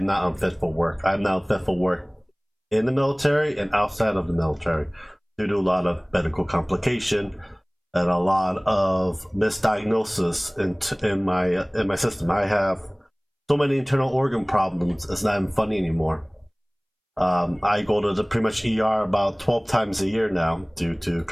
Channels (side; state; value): both; identical; correlation 1.00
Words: not unfit for work. I'm not unfit for work in the military and outside of the military due to a lot of medical complication and a lot of misdiagnosis in my system. I have so many internal organ problems. It's not even funny anymore. I go to the pretty much ER about 12 times a year now due to